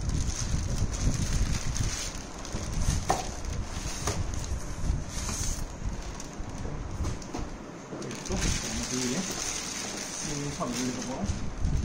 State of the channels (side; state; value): both; identical; correlation 1.00